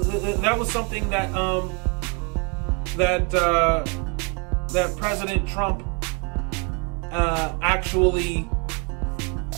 President Trump actually.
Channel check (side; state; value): left; quieter; 33.7 dB